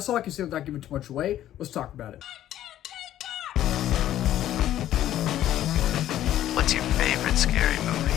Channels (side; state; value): right; quieter; 12.5 dB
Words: all I can say without giving too much away. Let's talk about it. What's your favorite scary movie?